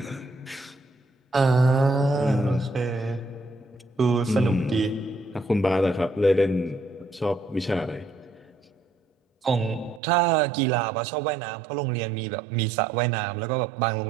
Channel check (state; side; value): drops out; left; at 10.0 s